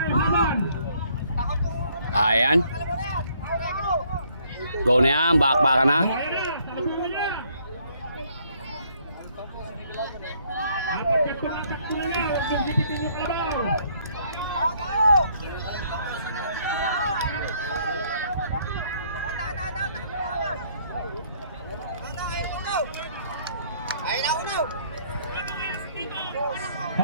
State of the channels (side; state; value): both; inverted; correlation -0.65